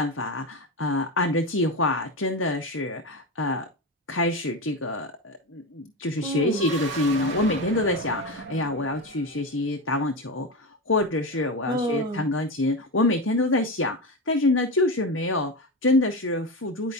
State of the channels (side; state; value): both; normal; correlation 0.19